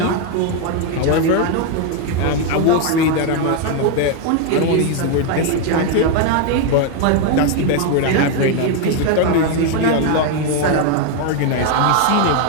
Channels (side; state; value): both; different; correlation 0.01